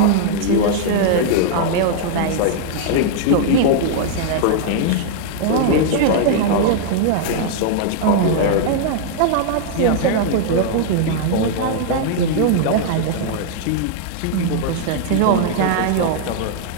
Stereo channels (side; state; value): both; different; correlation -0.01